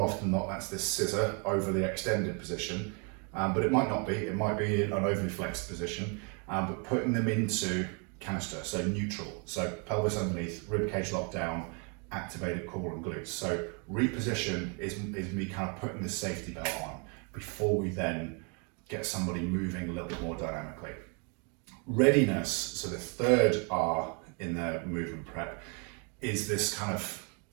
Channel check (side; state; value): left; quieter; 35.3 dB